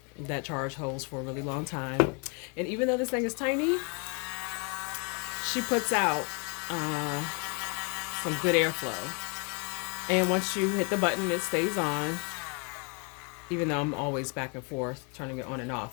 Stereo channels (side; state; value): right; quieter; 34.6 dB